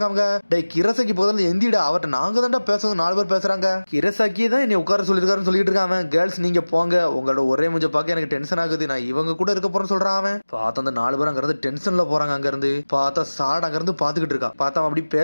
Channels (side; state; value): both; inverted; correlation -1.00